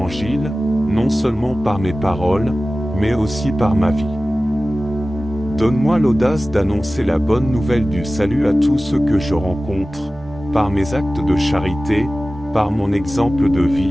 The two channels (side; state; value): both; normal; correlation 0.96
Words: non seulement par mes paroles, mais aussi par ma vie. Donne-moi l'audace d'annoncer la bonne nouvelle du salut à tous ceux que je rencontre, par mes actes de charité, par mon exemple de